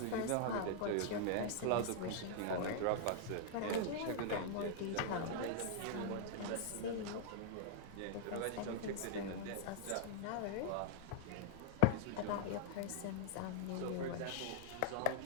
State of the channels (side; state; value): both; different; correlation -0.01